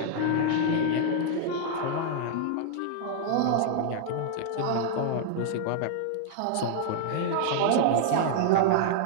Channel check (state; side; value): different; both; correlation -0.01